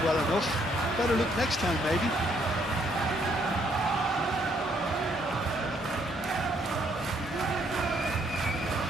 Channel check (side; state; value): both; normal; correlation 0.69